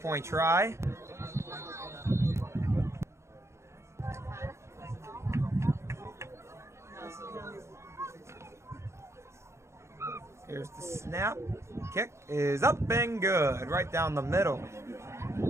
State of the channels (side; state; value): left; late; 0.13 ms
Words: try. Here's the snap. Kick is up and good. Right down the middle.